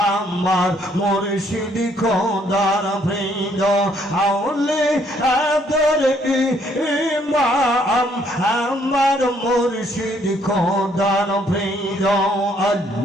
আমার মুর্শিদ খোদার প্রিয় আউলে আদর ইমাম আমার মুর্শিদ খোদার প্রিয়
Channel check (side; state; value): both; normal; correlation 0.67